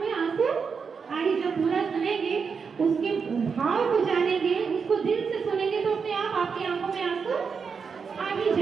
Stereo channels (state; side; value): quieter; left; 5.7 dB